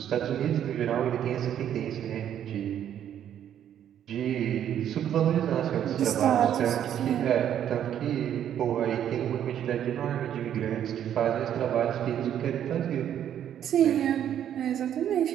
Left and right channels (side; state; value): left; quieter; 10.1 dB